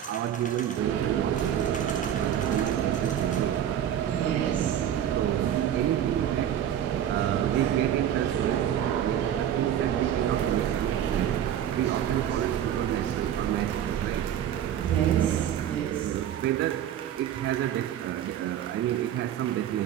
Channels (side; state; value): left; quieter; 10.3 dB